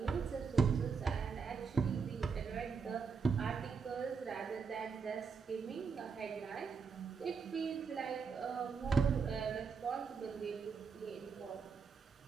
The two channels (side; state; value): left; quieter; 5.4 dB